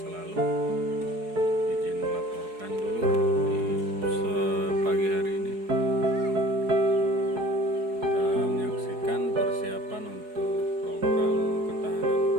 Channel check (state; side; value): late; left; 4.7 ms